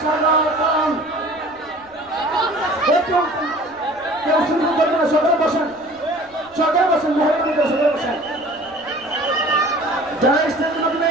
স্বাগতম একটু কেউ শুরু করবে না সকলে বসেন মেহরবানি করে সকলে বসেন যারা স্টেজের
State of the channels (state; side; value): noise; left; rumble, 28 dB below the sound